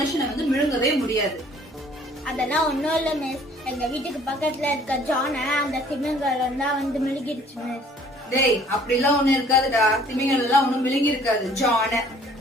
வந்து விழுங்கவே முடியாது. அதெல்லாம் ஒண்ணும் இல்ல மிஸ். எங்க வீட்டுக்கு பக்கத்துல இருக்க ஜான அந்த திமிங்கலம் தான் வந்து மிழுகிடுச்சு மிஸ். டேய், அப்படிலாம் ஒண்ணு இருக்காதுடா. திமிங்கலம் எல்லாம் ஒண்ணும் விழுங்கி இருக்காது, ஜான.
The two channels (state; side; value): normal; both; correlation 0.55